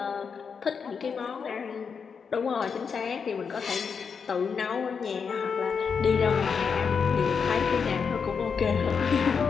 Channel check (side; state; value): right; quieter; 6.0 dB